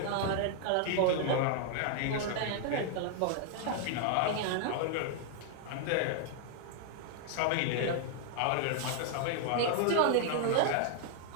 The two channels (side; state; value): both; different; correlation 0.00